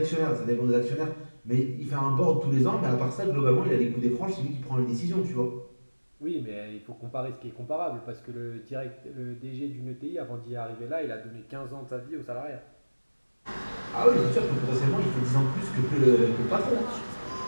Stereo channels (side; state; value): both; inverted; correlation -1.00